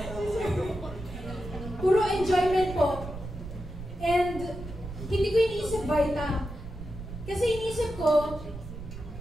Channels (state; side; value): noise; right; rumble, 11 dB below the sound